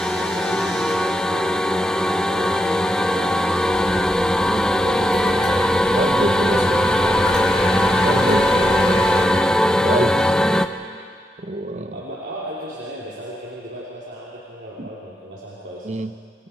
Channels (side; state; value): both; normal; correlation 0.84